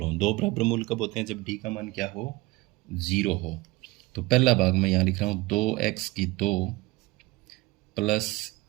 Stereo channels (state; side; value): quieter; left; 20.8 dB